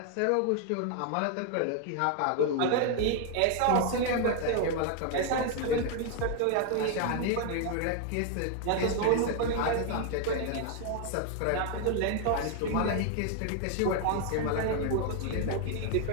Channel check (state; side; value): different; both; correlation 0.01